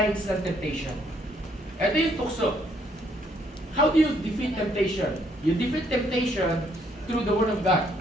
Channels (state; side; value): normal; both; correlation 0.69